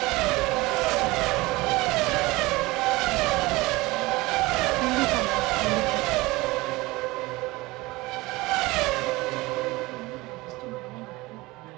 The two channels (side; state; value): left; quieter; 21.3 dB